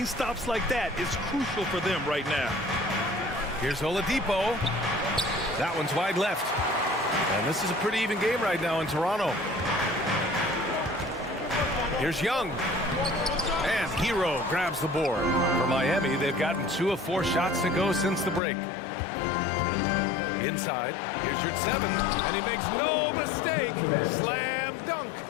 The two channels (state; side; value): drops out; right; at 18.4 s